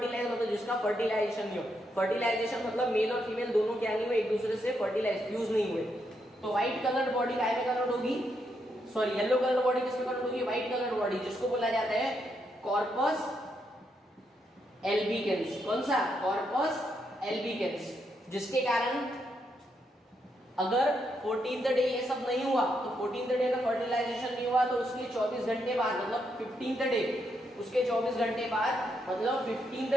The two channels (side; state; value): both; normal; correlation 0.79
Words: मतलब जिसका फर्टिलाइजेशन नहीं हो, फर्टिलाइजेशन मतलब मेल और फीमेल दोनों क्या नहीं हुए, एक दूसरे से फर्टिलाइज फ्यूज नहीं हुए, तो व्हाइट कलर बॉडी काय में कन्वर्ट होगी, सॉरी येलो कलर बॉडी किसमें कन्वर्ट होगी, व्हाइट कलर बॉडी, जिसको बोला जाता है कॉर्पस एल्बिकेंस। कौन सा, कॉर्पस एल्बिकेंस। जिसके कारण अगर 14th डे ये सब नहीं हुआ, तो 14th डे का फर्टिलाइजेशन नहीं हुआ तो उसके 24 घंटे बाद, मतलब 15th डे, उसके 24 घंटे बाद मतलब